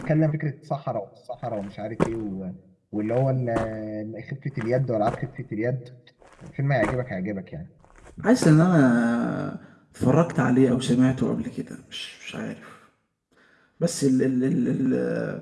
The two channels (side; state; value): both; identical; correlation 1.00